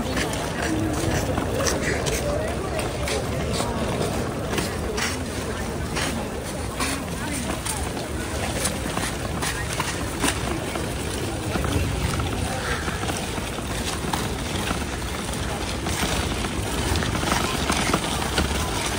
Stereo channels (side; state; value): both; identical; correlation 1.00